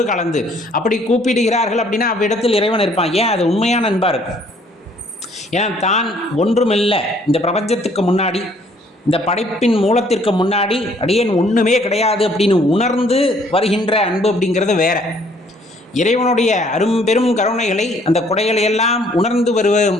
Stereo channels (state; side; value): normal; both; correlation 0.62